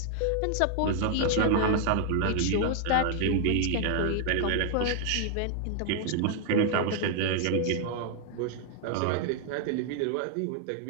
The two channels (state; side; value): different; both; correlation 0.00